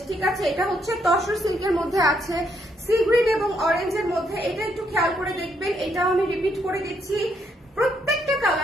ঠিক আছে, এটা হচ্ছে তসর সিল্কের মধ্যে আছে, সি গ্রিন এবং অরেঞ্জের মধ্যে। এটা একটু খেয়াল করে দেখবেন, এটাও আমি রিপিট করে দিচ্ছি। প্রত্যেকটা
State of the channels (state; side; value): normal; both; correlation 0.74